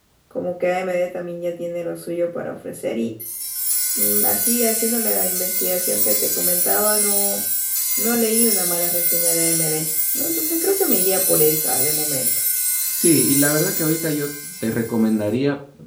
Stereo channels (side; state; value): both; identical; correlation 1.00